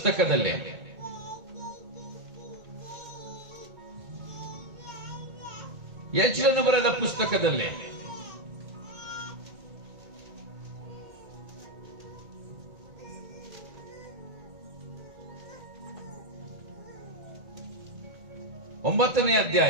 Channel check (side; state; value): left; late; 2.2 ms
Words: ಯಜ್ಞನು ಬರೆದ ಪುಸ್ತಕದಲ್ಲಿ ಒಂಬತ್ತನೇ